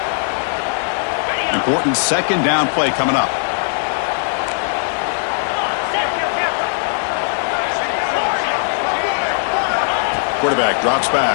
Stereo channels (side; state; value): right; silent; digital silence